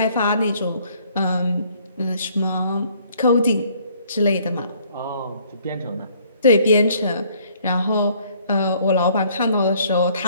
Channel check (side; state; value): both; inverted; correlation -0.62